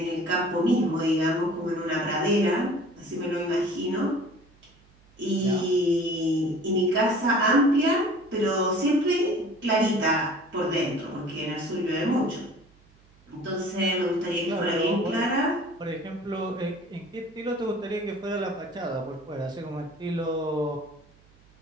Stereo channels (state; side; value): noise; right; hum, 30 dB below the sound